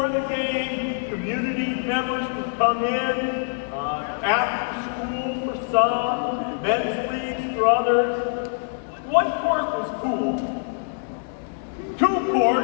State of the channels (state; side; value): silent; right; 62 dB below the other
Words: the game, community members can come in, after school for some, men's leagues for others. One court was cool. 2